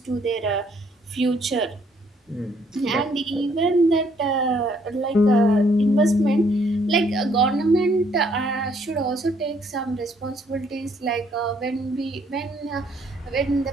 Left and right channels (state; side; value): normal; both; correlation 0.66